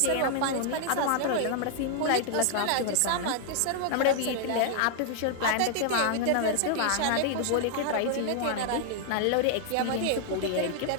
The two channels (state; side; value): different; both; correlation 0.00